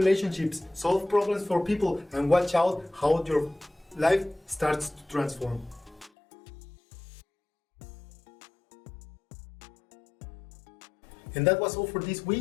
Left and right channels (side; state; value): right; drops out; at 6.1 s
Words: solve problems for people, and watch out how your life starts to transform. And that was all for this